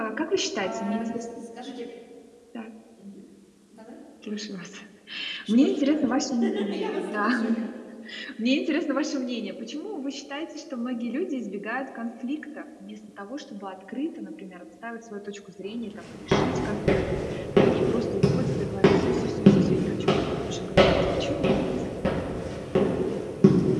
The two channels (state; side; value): identical; both; correlation 1.00